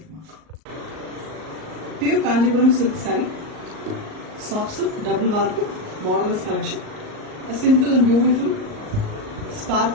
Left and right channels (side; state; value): left; late; 38 ms